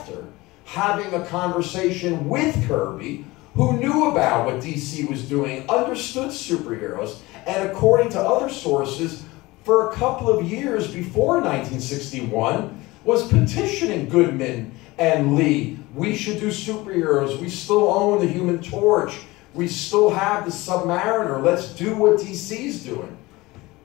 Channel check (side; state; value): right; quieter; 20.9 dB